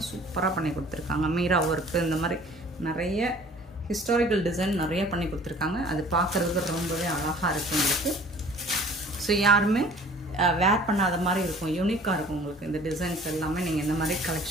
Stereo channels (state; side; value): normal; both; correlation 0.50